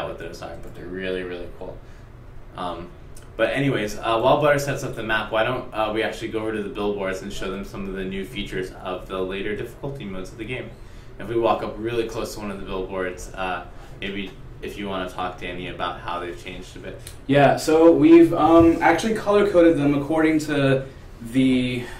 what those are, but they're really, really cool. But anyways, while Butter sets up the map, why don't we actually go over to the billboards and show them some of the new features of the later difficulty modes of the game. If we walk up really close to one of the billboards, maybe if you want to talk, Danny, about how they've changed a bit. Yeah, so we've actually color-coded them according to the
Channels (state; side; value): identical; both; correlation 1.00